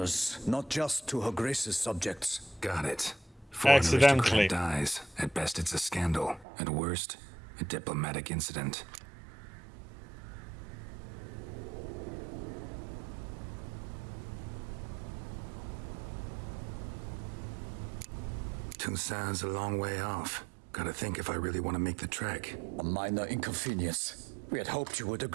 not just to Her Grace's subjects. Got it. Accidentally dies. At best, it's a scandal. At worst, a diplomatic incident. Toussaint's a long way off. Gotta think if I really want to make the trek. A minor inconvenience. We had hoped you would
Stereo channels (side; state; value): left; drops out; at 6.5 s